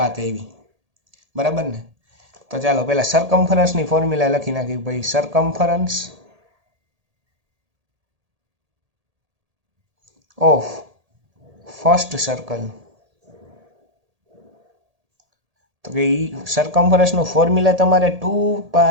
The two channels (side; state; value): left; late; 1.8 ms